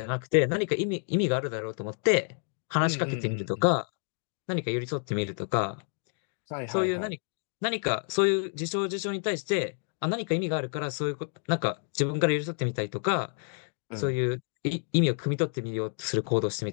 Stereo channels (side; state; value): right; silent; 56 dB below the other